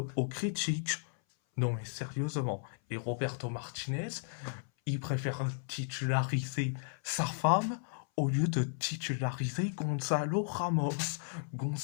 aux critiques. Non mais sérieusement. Et Roberto Martinez, il préfère titulariser sa femme au lieu de titulariser Gonzalo Ramos.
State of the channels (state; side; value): silent; right; 55 dB below the other